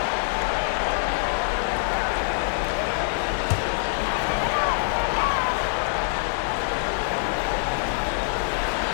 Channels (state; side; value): silent; right; digital silence